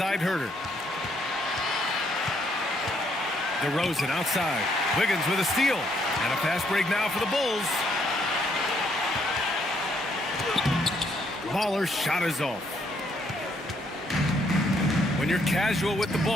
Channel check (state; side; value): normal; both; correlation 0.71